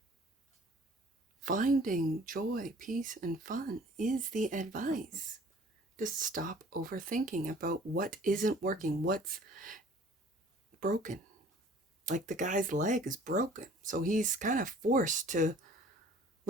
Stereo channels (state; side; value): normal; both; correlation 0.51